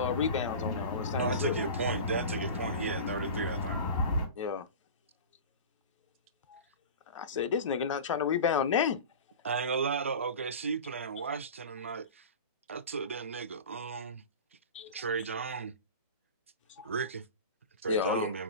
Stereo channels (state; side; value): inverted; both; correlation -0.32